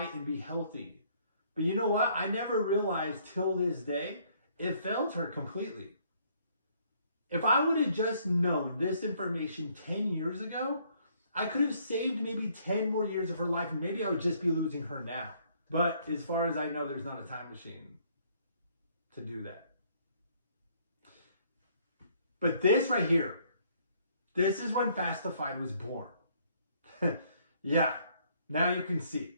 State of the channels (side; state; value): both; inverted; correlation -0.65